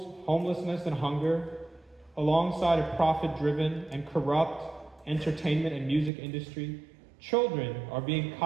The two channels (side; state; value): left; drops out; at 6.1 s